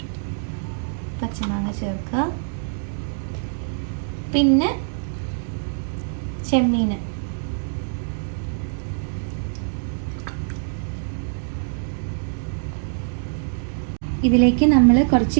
പച്ചമാങ്ങ ചേർക്കുക. പിന്നെ ചെമ്മീൻ, ഇതിലേക്ക് നമ്മൾ കുറച്ച്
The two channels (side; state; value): left; silent; digital silence